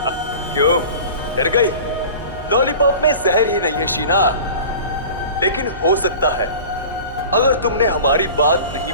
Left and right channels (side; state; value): both; inverted; correlation -0.39